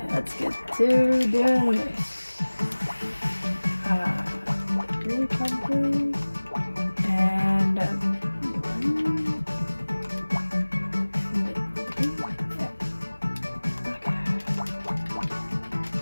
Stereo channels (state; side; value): inverted; both; correlation -1.00